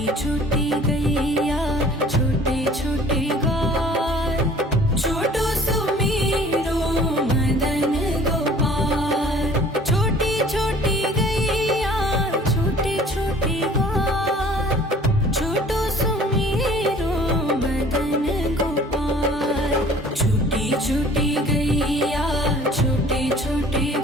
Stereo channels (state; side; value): normal; both; correlation 0.51